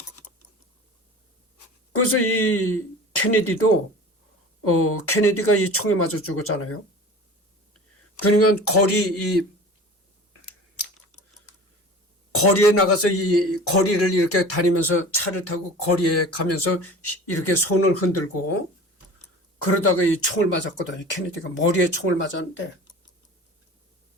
그래서 이 케네디도 케네디가 이 총에 맞아 죽었잖아요. 그러니까 거리에 나가서 이 거리를 이렇게 다니면서 차를 타고 거리에 가면서 이렇게 손을 흔들고 그러다가 이 총을 맞았거든요. 케네디가 머리에 총을 맞았는데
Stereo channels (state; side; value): normal; both; correlation 0.39